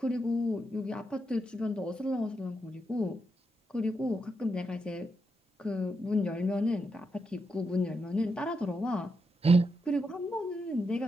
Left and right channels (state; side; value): normal; both; correlation 0.84